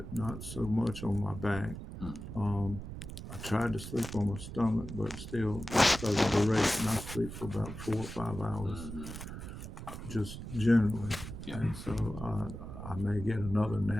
not so much on my back. Mhm. Um, I tried to sleep on my stomach, but still, because of the duration, I sleep for about 4 or 5 hours, Mhm. just generally. Yeah. And so I may get another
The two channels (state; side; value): noise; right; rumble, 9 dB below the sound